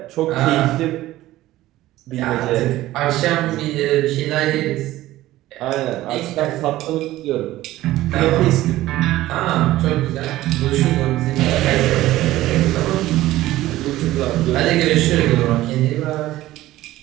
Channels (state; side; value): quieter; left; 15.8 dB